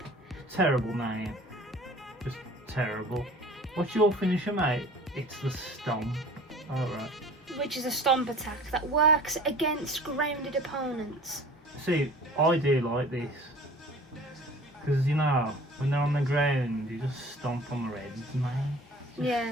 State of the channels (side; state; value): both; normal; correlation 0.45